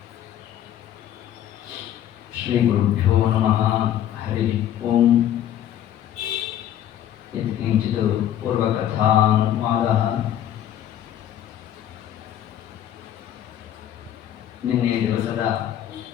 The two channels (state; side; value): quieter; right; 11.1 dB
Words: श्री गुरुभ्यो नमः। हरि ओम। यत्किंचित् पूर्वकथानुवादः। ನಿನ್ನೆ ದಿವಸದ